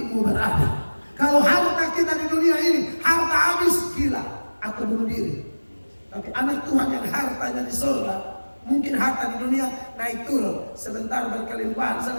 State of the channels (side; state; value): both; inverted; correlation -1.00